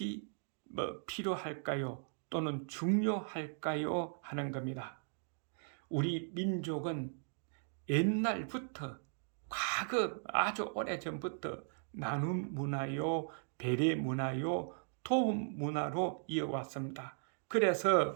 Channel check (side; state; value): left; silent; digital silence